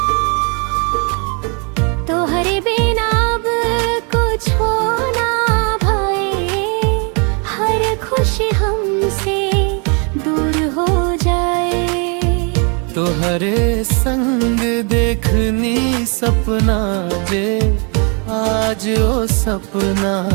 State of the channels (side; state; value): left; quieter; 35.6 dB